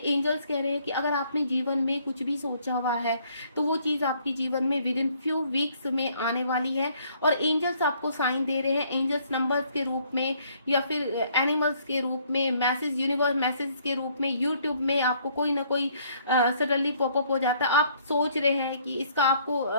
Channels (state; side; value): inverted; both; correlation -0.64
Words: कह रहे हैं कि अगर आपने जीवन में कुछ भी सोचा हुआ है तो वो चीज आपके जीवन में विद इन फ्यू वीक्स में आने वाली है। और एंजल्स आपको साइन दे रहे हैं, एंजल्स नंबर्स के रूप में या फिर एनिमल्स के रूप में, मैसेज, यूनिवर्स मैसेज के रूप में, यूट्यूब में आपको कोई ना कोई सडनली पॉपअप हो जाता है, आप सोच रहे हैं कि इसका